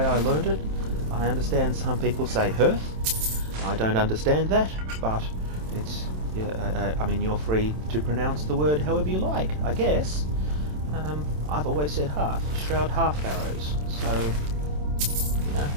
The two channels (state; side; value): late; left; 27 ms